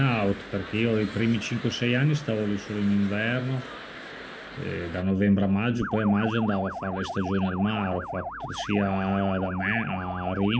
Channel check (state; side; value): identical; both; correlation 1.00